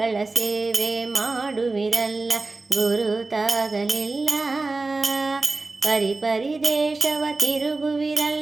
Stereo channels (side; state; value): left; quieter; 3.5 dB